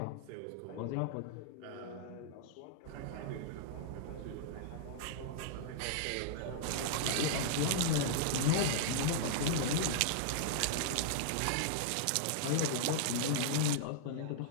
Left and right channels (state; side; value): different; both; correlation -0.01